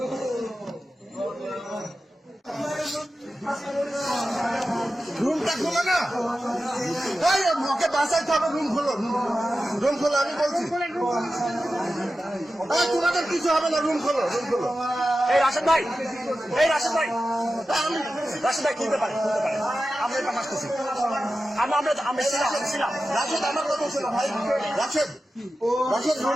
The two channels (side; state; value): both; normal; correlation 0.93